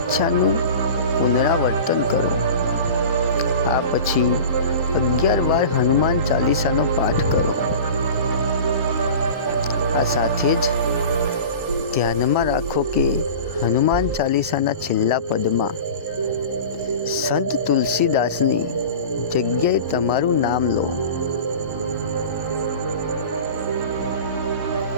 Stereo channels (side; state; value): both; inverted; correlation -0.35